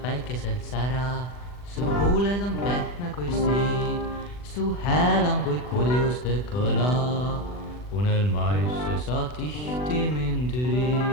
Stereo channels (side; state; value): right; late; 40 ms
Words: päikeselt sära, su huuled on pehme kui siid, su hääl on kui kuljuste kõla, unelmaisse sa tihti mind